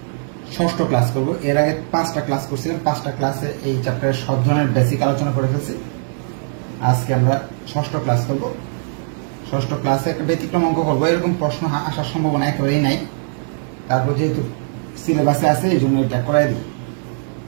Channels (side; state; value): left; silent; digital silence